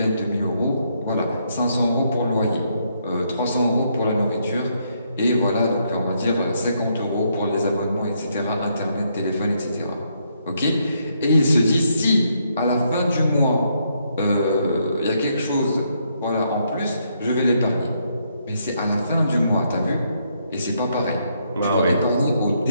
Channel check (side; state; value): both; inverted; correlation -0.75